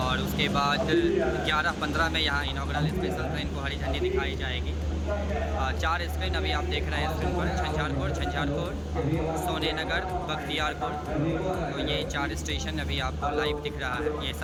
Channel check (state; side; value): identical; both; correlation 1.00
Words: उसके बाद 11:15 में यहाँ इनॉग्रल स्पेशल ट्रेन को हरी झंडी दिखाई जाएगी। 4 स्क्रीन अभी आप देख रहे हैं स्क्रीन पर। झंझारपुर, सोने नगर, बख्तियारपुर। तो ये 4 स्टेशन अभी आपको लाइव दिख रहा है। ये